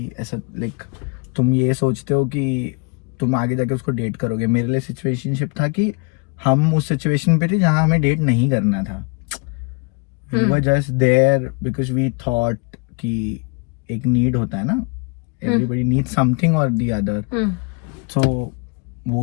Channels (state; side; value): quieter; right; 32.1 dB